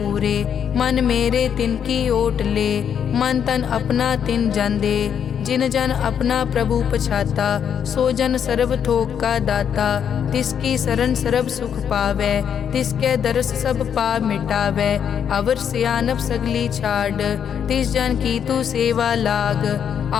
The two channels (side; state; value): right; quieter; 8.2 dB